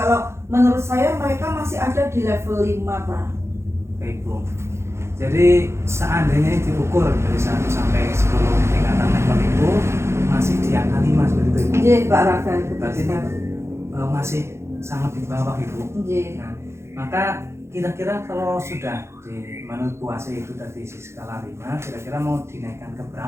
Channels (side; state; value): left; late; 0.13 ms